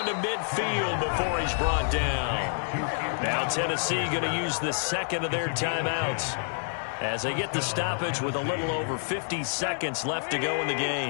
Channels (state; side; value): silent; right; 59 dB below the other